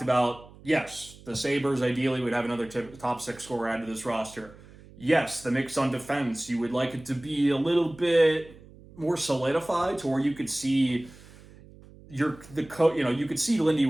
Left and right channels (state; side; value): noise; right; hum, 21 dB below the sound